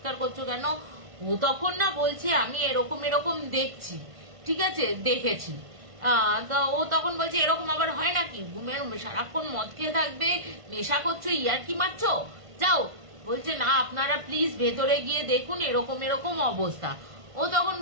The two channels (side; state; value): left; late; 1.5 ms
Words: করছো কেন? ও তখন না বলছে আমি এরকম দেখছি। ঠিক আছে, দেখেছি। তো ও তখন বলছে এরকম আবার হয় নাকি, সারাক্ষণ মদ খেয়ে থাকবে, নেশা করছো, ইয়ার কি মারছো, যাও। বলছে না আপনারা প্লিজ ভেতরে গিয়ে দেখুন এরকম এরকম অবস্থা। ও তখন